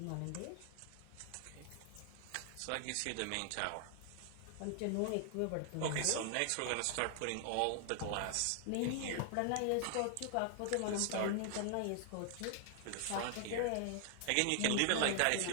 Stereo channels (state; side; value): different; both; correlation 0.00